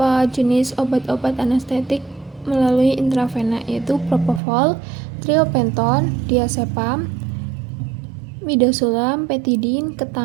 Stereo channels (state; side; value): drops out; left; at 4.4 s